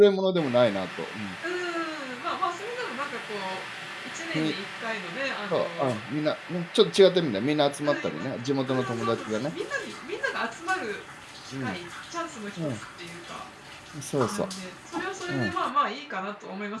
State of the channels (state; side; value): identical; both; correlation 1.00